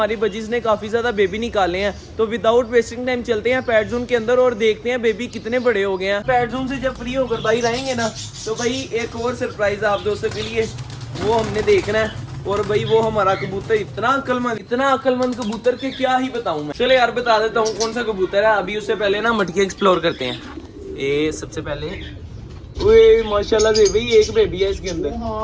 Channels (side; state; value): both; identical; correlation 1.00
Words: बजीज ने काफ़ी ज़्यादा बेबी निकाले हैं, तो विदाउट वेस्टिंग टाइम चलते हैं पैट जोन के अंदर और देखते हैं बेबी कितने बड़े हो गए हैं। पैट जोन से जब फ्री होकर बाहर आएंगे ना, तो भाई एक और सरप्राइज आप दोस्तों के लिए वो हमने देखना है। और भाई वो हमारा कबूतर इतना अक्लमंद कबूतर के क्या ही बताऊं मैं। चले यार बता देता हूँ कौन सा कबूतर है। अभी उससे पहले ना मटकी एक्सप्लोर करते हैं। ये सबसे पहले ओए माशाल्लाह से भाई एक बेबी है इसके अंदर।